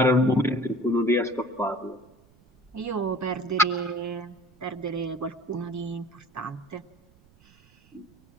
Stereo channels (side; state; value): right; noise; rumble, 29 dB below the sound